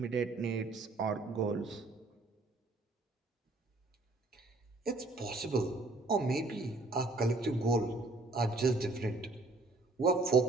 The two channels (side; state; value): left; quieter; 3.1 dB